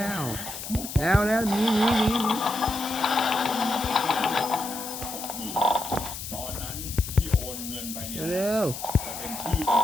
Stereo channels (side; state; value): left; noise; hiss, 9 dB below the sound